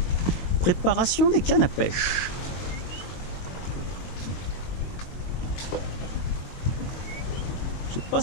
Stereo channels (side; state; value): right; late; 22 ms